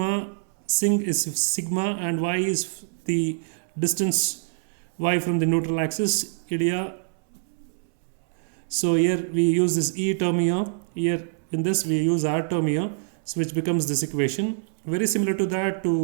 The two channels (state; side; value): silent; left; 62 dB below the other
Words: sing is sigma, and y is the distance y from the neutral axis, Ilya. So here we use this E term here, in this we use R term here, so which becomes this equation. Very similar to that,